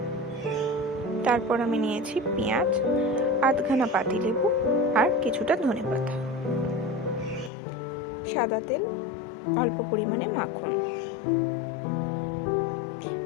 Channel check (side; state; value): right; drops out; at 7.5 s